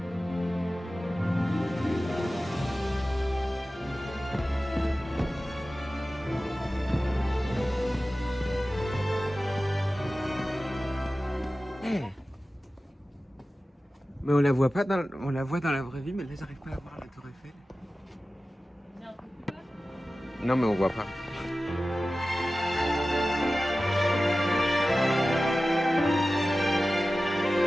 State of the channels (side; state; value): both; normal; correlation 0.95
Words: Mais on la voit pas on la voit dans la vraie vie, mais là j'arrive pas à voir la tour Eiffel. Non mais on voit pas.